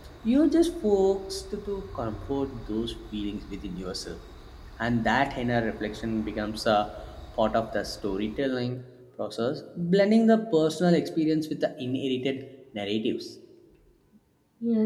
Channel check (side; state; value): both; identical; correlation 1.00